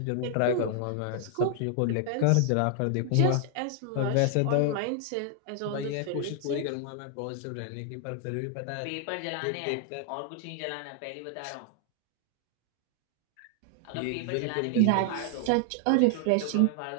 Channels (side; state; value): both; different; correlation 0.00